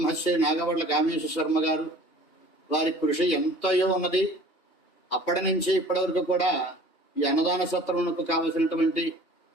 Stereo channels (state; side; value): late; right; 3.0 ms